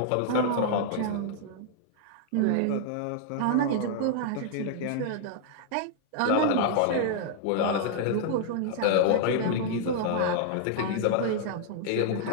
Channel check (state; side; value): different; both; correlation -0.01